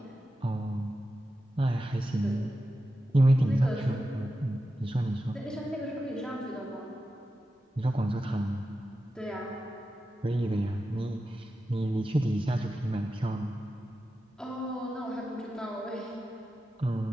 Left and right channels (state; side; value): normal; both; correlation 0.91